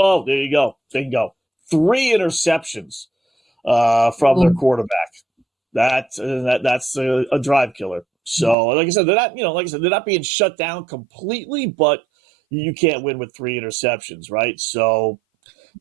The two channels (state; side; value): drops out; left; at 8.6 s